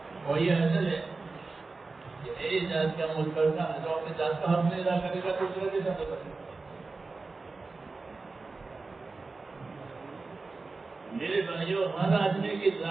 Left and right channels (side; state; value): left; quieter; 3.8 dB